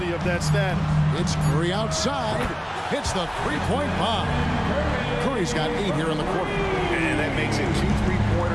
of that status. It's Curry outside. Hits the three-point bomb. Curry's got 8 here in the quarter. And that makes it 2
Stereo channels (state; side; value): identical; both; correlation 1.00